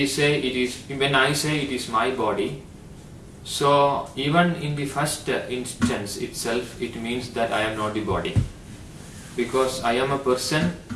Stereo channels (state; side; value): identical; both; correlation 1.00